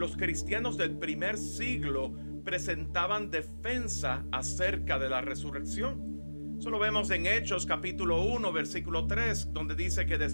cristianos del primer siglo presentaban defensa acerca de la resurrección. Eso lo vemos en Hechos capítulo 1 versículo 3, donde dice que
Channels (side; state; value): both; inverted; correlation -1.00